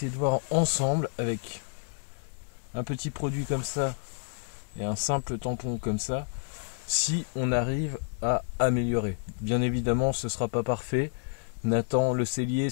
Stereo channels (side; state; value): right; silent; digital silence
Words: de voir ensemble avec un petit produit comme ça et un simple tampon comme ça, si on arrive à améliorer. Bien évidemment ce sera pas parfait. Nathan le cellier,